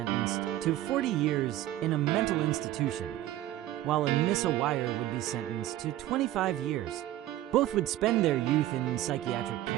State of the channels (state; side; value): quieter; left; 14.4 dB